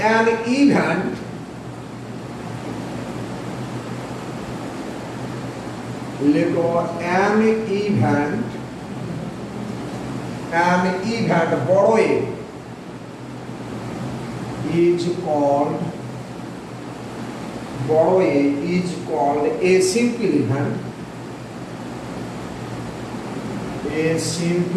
অ্যান ইভেন্ট, লেখো অ্যান ইভেন্ট, অ্যান ইভেন্ট বড় এ is called, বড় এ is called a simple event, a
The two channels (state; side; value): identical; both; correlation 1.00